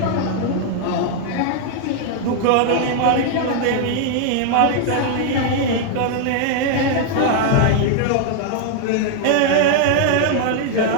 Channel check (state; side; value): different; both; correlation 0.00